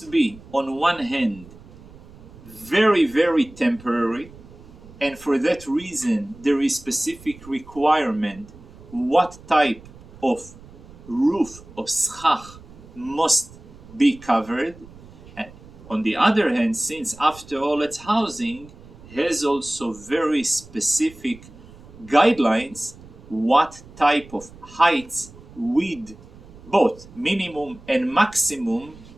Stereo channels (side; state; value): right; noise; rumble, 20 dB below the sound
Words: be, on one hand, very, very temporary, and for that reason there is specific requirement what type of roof of schach must be covered. And on the other hand, since after all it's housing, has also very specific guidelines what type of heights with both minimum and maximum